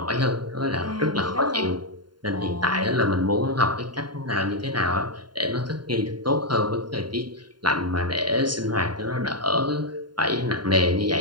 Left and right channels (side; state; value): left; late; 0.71 ms